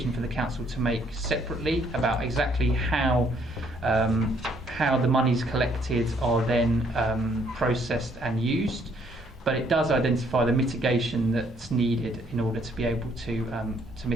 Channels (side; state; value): both; normal; correlation 0.67